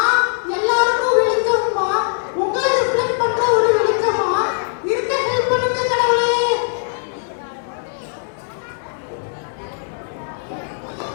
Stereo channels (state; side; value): silent; right; 65 dB below the other